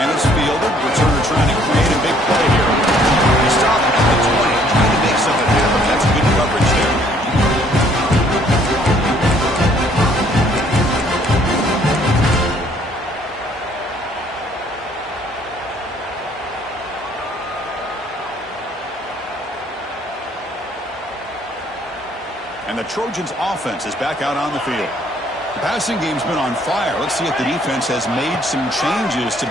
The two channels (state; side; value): normal; both; correlation 0.62